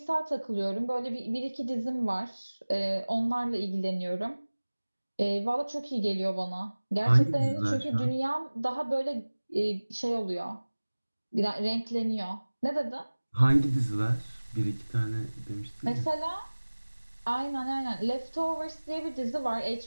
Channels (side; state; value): both; inverted; correlation -1.00